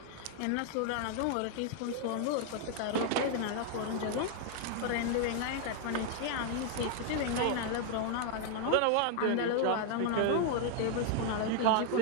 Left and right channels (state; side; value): different; both; correlation 0.00